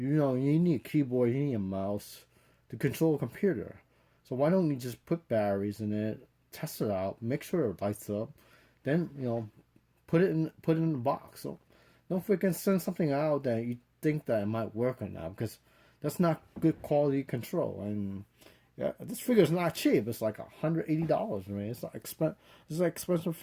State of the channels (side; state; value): both; identical; correlation 1.00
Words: need a keyboard, you need a mouse to control a computer. So why don't you just put batteries in it, test it out, make sure it lights up, then put it in the box. So don't freaking send something out that you think that it might work or not, because that's not good quality control. And yeah, this figure is not cheap. It's like $180. I mean, it's like it's an expensive